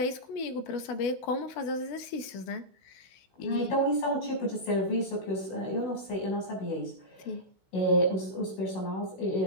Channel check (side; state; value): right; late; 16 ms